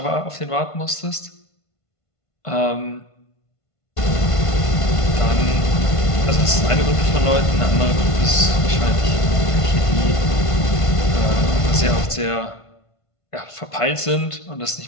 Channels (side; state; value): right; late; 1.5 ms